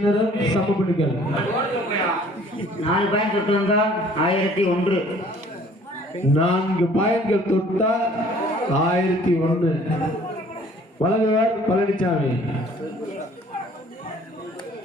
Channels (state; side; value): normal; both; correlation 0.55